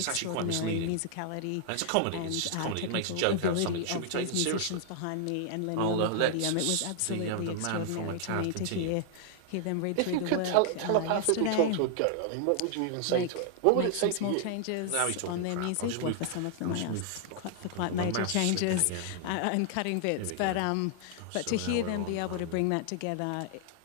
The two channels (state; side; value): different; both; correlation 0.00